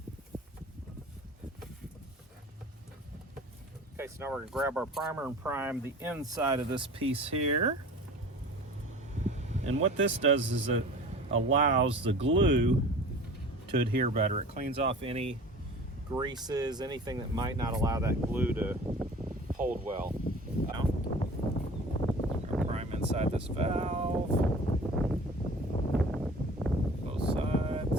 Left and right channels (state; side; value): normal; both; correlation 0.42